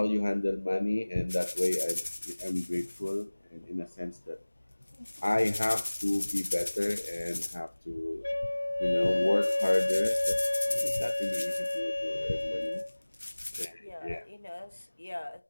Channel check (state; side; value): inverted; both; correlation -1.00